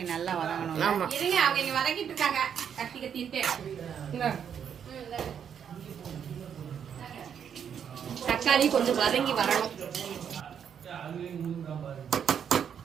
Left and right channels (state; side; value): quieter; left; 8.1 dB